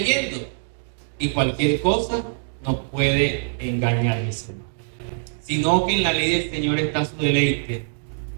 Y cualquier cosa nos puede engañar, mis hermanos. Sino que en la ley del Señor está su deleite,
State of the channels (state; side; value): silent; left; digital silence